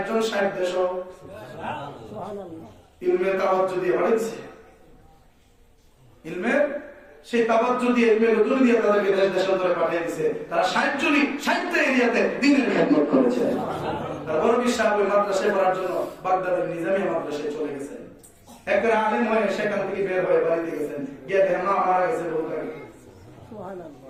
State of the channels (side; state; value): both; identical; correlation 1.00